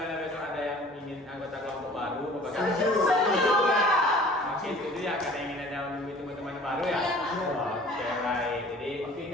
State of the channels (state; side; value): normal; both; correlation 0.49